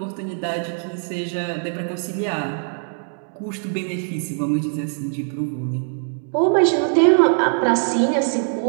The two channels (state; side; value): silent; left; 64 dB below the other